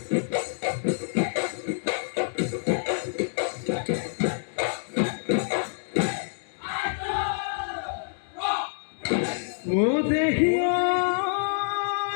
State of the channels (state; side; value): silent; right; digital silence